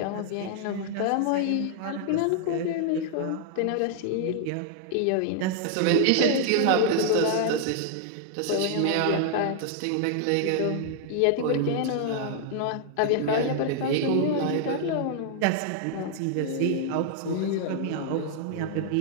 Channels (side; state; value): both; different; correlation -0.01